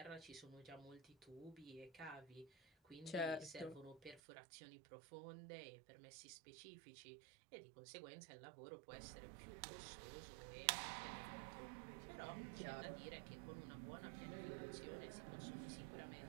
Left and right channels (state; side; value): drops out; left; at 4.2 s